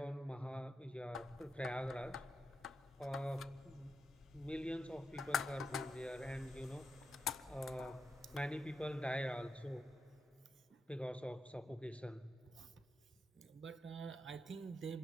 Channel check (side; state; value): both; normal; correlation 0.85